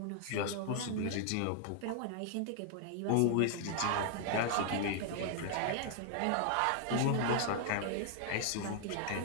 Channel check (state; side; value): different; both; correlation 0.00